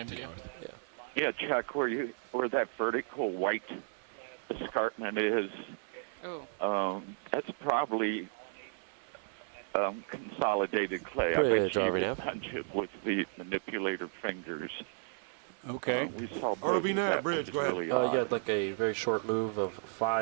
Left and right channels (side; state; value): left; silent; 55 dB below the other